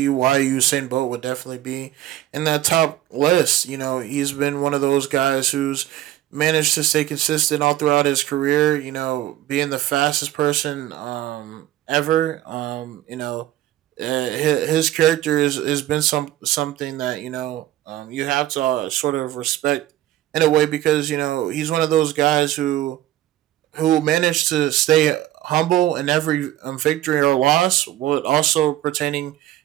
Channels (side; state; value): left; quieter; 14.1 dB